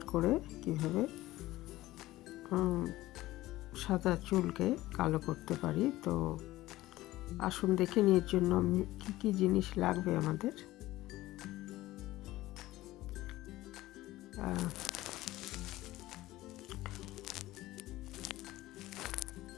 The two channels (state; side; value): quieter; right; 16.9 dB